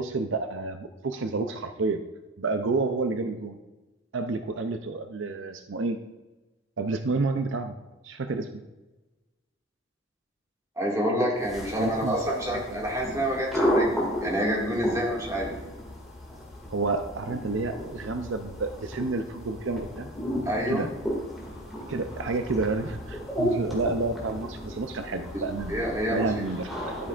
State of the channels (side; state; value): both; normal; correlation 0.38